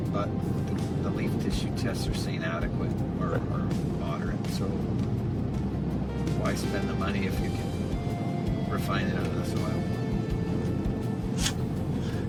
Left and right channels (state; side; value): identical; both; correlation 1.00